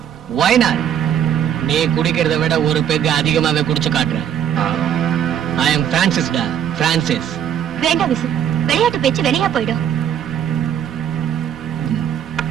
Why not? நீ குடிக்கிறத விட ஒரு பெக் அதிகமாவே குடிச்சு காட்டுறேன். I am Francis டா, Francis. வேண்டாம் விசு, விளையாட்டு பேச்சு வெளியா போயிடும்.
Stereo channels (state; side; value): quieter; left; 9.5 dB